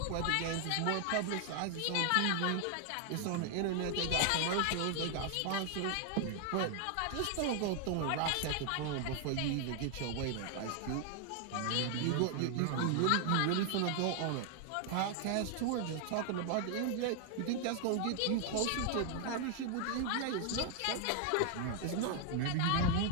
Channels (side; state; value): both; different; correlation 0.00